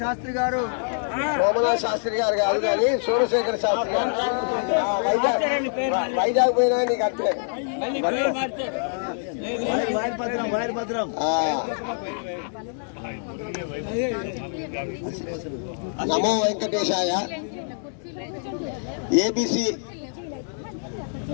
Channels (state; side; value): silent; right; digital silence